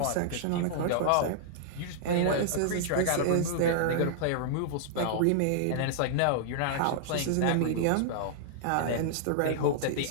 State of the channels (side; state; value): both; different; correlation -0.01